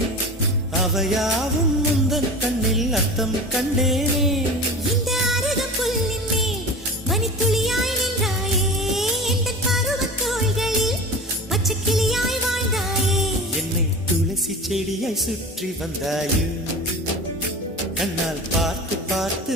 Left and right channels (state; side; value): normal; both; correlation 0.33